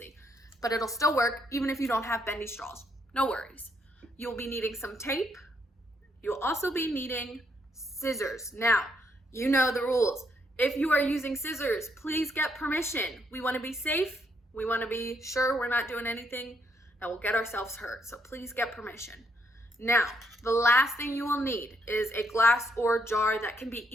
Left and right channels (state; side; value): normal; both; correlation 0.74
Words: But it'll still work even if you don't have bendy straws. No worries. You'll be needing some tape. You'll also be needing scissors. Now, you know the rules. If you are using scissors, please get permission. We want to be safe. We want to be sure we're not doing anything that will get ourselves hurt. So please get permission. Now, the last thing you will need is a glass or jar that can be